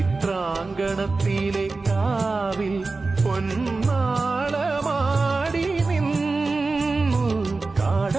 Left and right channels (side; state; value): left; quieter; 3.7 dB